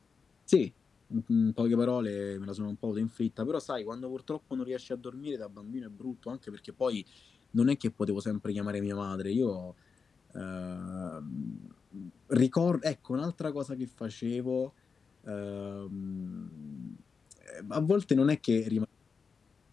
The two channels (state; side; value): quieter; right; 5.4 dB